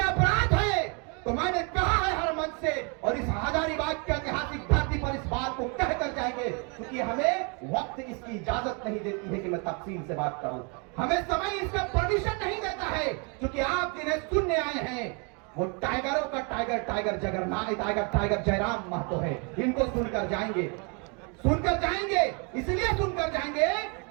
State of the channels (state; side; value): quieter; left; 34.4 dB